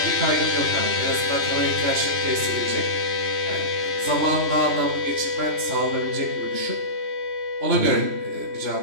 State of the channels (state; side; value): late; left; 3.0 ms